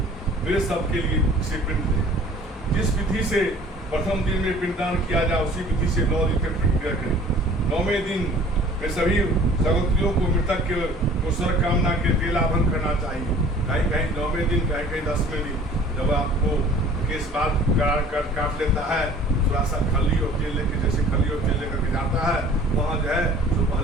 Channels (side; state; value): both; normal; correlation 0.49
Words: प्रेत शब्द के लिए इसे पिंड दे। जिस विधि से प्रथम दिन में पिंडदान किया जाए उसी विधि से 9 दिन तक पिंड क्रिया करें। 9वें दिन में सभी सगोत्रियों को मृतक के कुशल कामना के तेलाभन करना चाहिए। कहीं कहीं 9वें दिन, कहीं कहीं 10वें दिन जब आपको केस बाल काट लेता है, थोड़ा सा खली और तेल लेके, जैसे खली और तेल लेकर के जाता है, वहाँ जो है तो